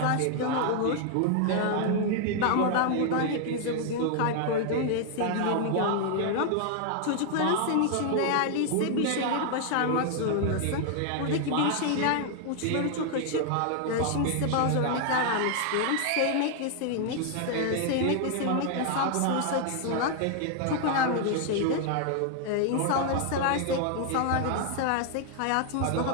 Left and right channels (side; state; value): both; different; correlation 0.00